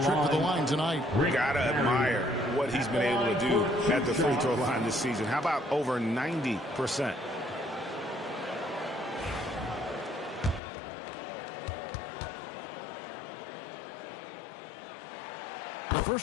trip to the line tonight. Gotta admire what he's been able to do at the free throw line this season. How about over 90%? The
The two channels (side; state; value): right; drops out; at 10.6 s